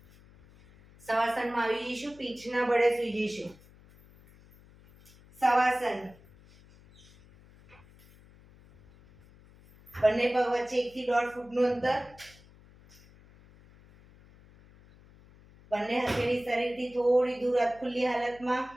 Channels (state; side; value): noise; left; hum, 25 dB below the sound